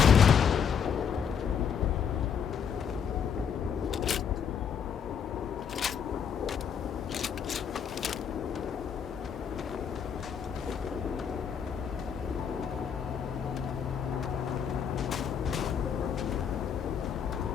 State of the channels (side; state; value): right; quieter; 7.4 dB